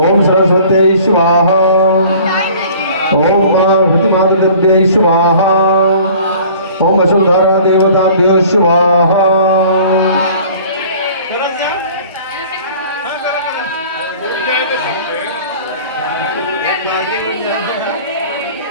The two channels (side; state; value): both; inverted; correlation -0.48